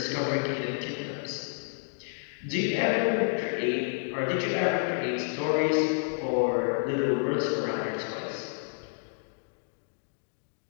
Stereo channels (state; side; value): silent; right; digital silence